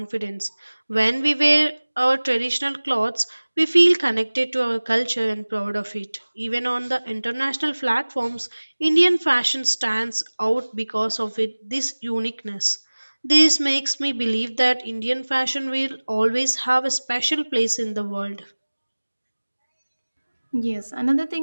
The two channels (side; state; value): both; inverted; correlation -1.00